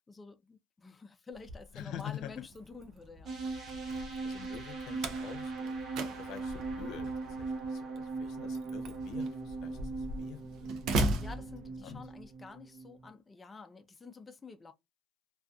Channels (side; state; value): both; normal; correlation 0.67